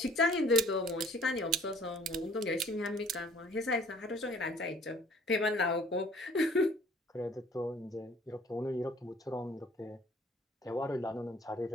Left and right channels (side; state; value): both; normal; correlation 0.54